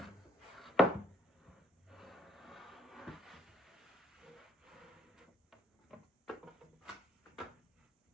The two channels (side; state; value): both; normal; correlation 0.64